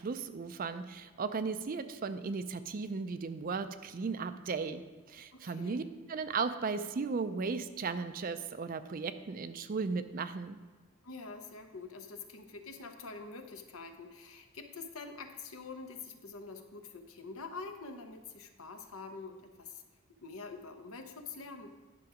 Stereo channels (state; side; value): quieter; left; 3.5 dB